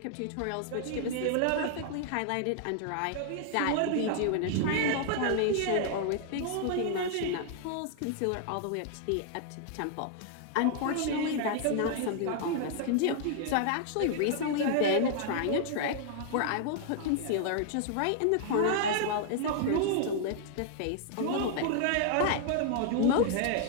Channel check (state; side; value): different; both; correlation -0.01